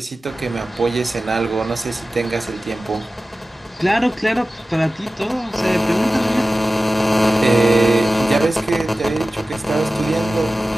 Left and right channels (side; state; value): both; normal; correlation 0.95